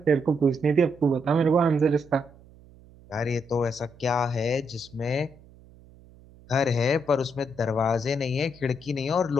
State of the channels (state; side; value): noise; right; hum, 24 dB below the sound